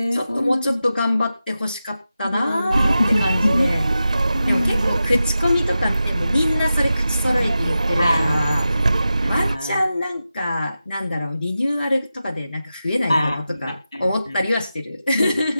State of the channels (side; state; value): both; inverted; correlation -0.91